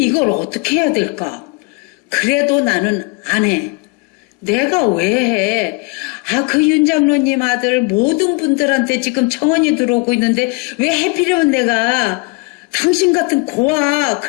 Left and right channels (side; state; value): right; quieter; 28.7 dB